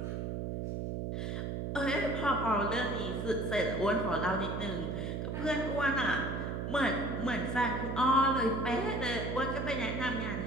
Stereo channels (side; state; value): right; noise; hum, 3 dB below the sound